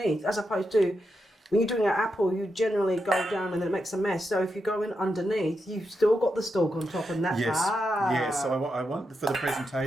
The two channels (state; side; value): normal; both; correlation 0.86